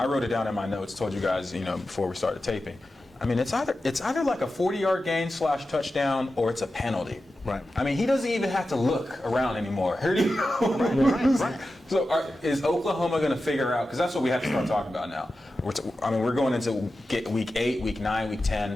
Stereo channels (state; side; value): normal; both; correlation 0.92